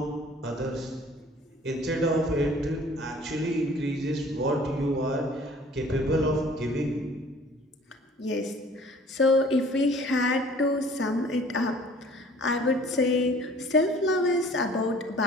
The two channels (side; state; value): both; normal; correlation 0.51